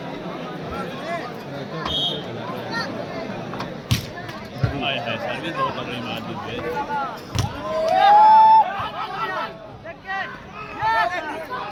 सर्विस बहुत अपनी मार दी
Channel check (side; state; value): both; identical; correlation 1.00